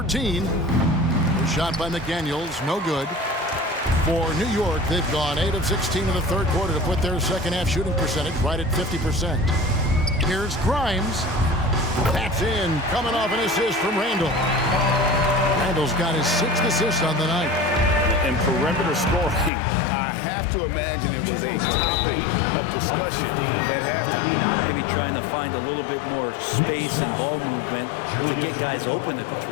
the shot by McDaniels. No good. For New York, they've gone 8 of 16 in the third quarter to put their second half shooting percentage right at 50%. Here's Grimes. That's in, coming off an assist from Randle. Randle's got his 6th assist on the night. And perimeter scoring, I have to imagine it was a topic of discussion at halftime. Maybe trying to find a little bit more space and ball movement to get guys open at the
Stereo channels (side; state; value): right; drops out; at 19.5 s